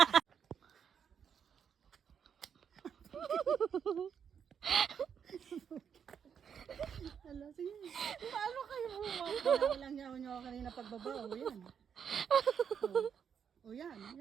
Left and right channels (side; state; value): left; quieter; 7.6 dB